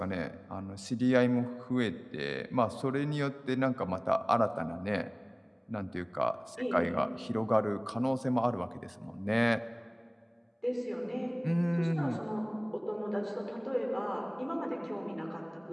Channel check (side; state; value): both; identical; correlation 1.00